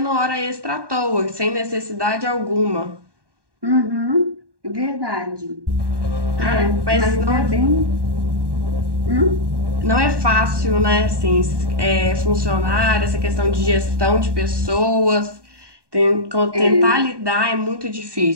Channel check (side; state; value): left; late; 1.2 ms